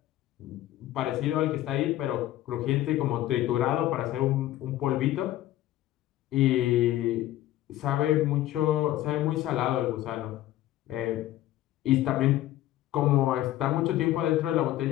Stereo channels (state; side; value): quieter; right; 14.3 dB